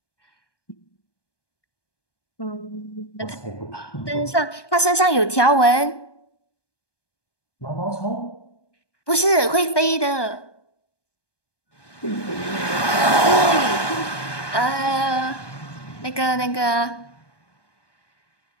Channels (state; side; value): late; right; 1.2 ms